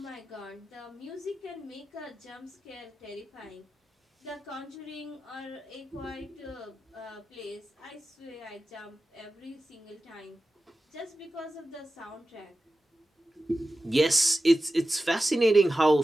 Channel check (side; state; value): both; normal; correlation 0.94